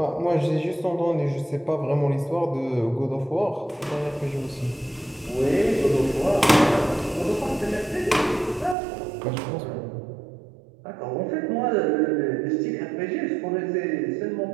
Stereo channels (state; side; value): drops out; left; at 8.8 s